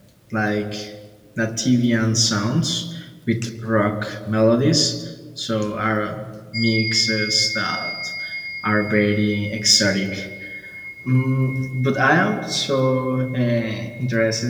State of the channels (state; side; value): identical; both; correlation 1.00